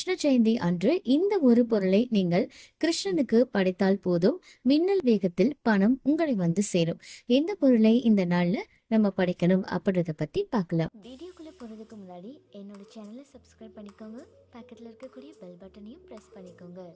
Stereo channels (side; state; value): both; identical; correlation 1.00